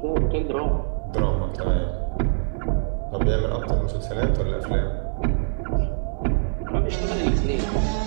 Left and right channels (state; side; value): silent; left; digital silence